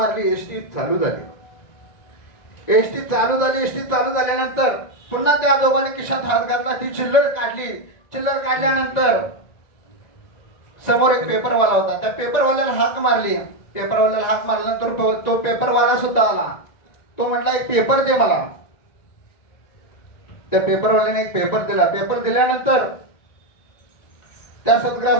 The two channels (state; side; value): late; right; 1.9 ms